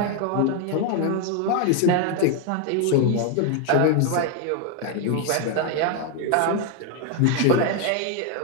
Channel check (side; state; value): both; different; correlation 0.01